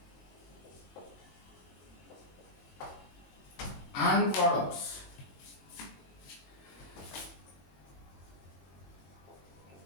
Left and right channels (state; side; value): late; right; 22 ms